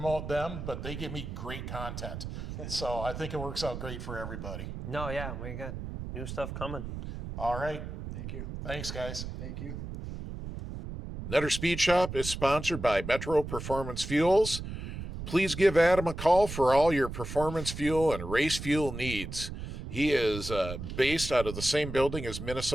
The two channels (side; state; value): right; noise; rumble, 8 dB below the sound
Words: them, but they give me great content. So I think it works out great for everybody. No, yeah, New stuff coming. All right. Thank you. Thanks, guys. Thank you. Nutter Speed Shop is sponsored by Metro Performance Fuels. Please give Adam a call for all your performance fuel and race fuel needs. He is based out of the same building as